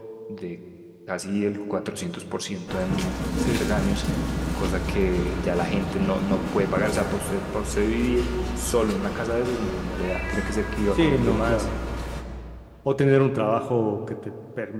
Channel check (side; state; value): both; identical; correlation 1.00